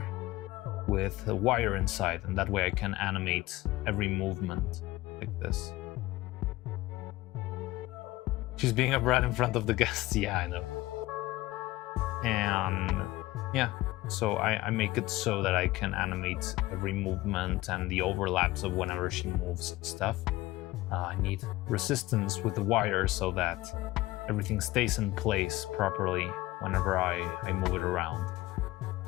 with a wire inside, and that way I can animate every movement like this. She's being a brat in front of the guests. Yeah, I know. And yeah, so I make it so that I can animate every movement and the overlaps of whenever she moves stuff. I need resistance with the wire so that everything stays in place properly whenever I move it around.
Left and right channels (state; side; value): quieter; right; 18.1 dB